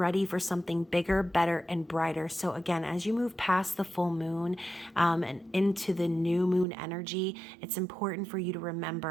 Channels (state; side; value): drops out; left; at 6.7 s